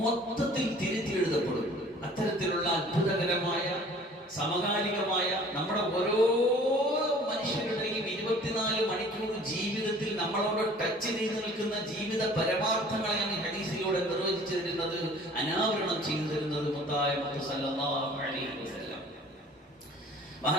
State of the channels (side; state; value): both; normal; correlation 0.50